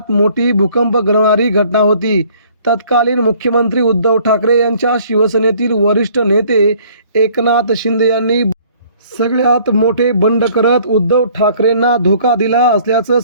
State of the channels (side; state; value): both; inverted; correlation -0.57